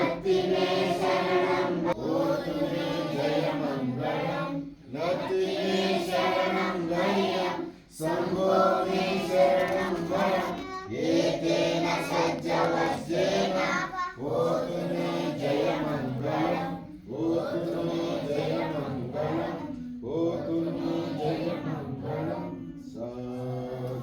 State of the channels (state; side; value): identical; both; correlation 1.00